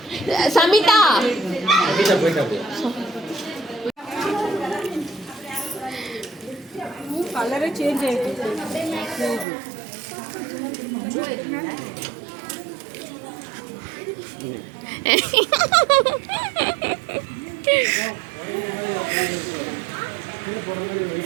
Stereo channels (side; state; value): left; drops out; at 9.5 s